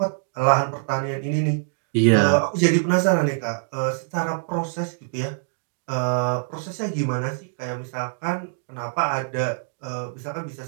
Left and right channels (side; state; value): left; silent; digital silence